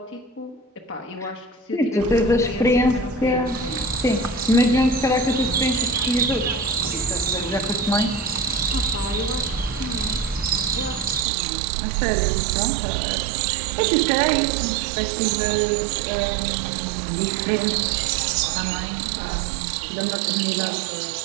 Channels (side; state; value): left; drops out; at 11.2 s